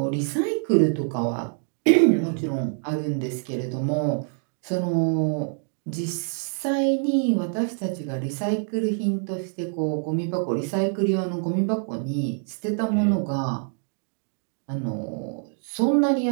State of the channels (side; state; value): left; silent; 57 dB below the other